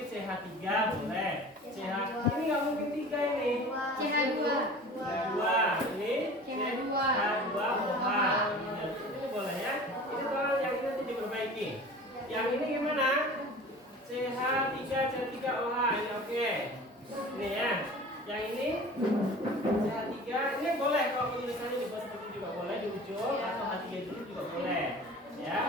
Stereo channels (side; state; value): both; normal; correlation 0.41